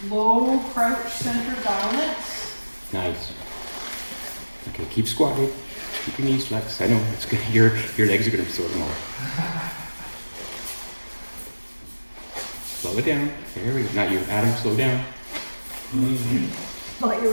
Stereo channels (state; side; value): inverted; both; correlation -1.00